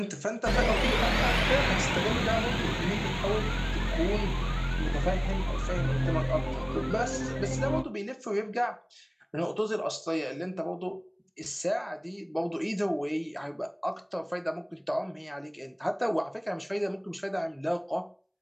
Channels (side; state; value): both; identical; correlation 1.00